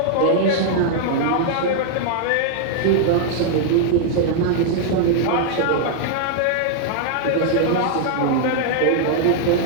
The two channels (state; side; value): different; both; correlation -0.01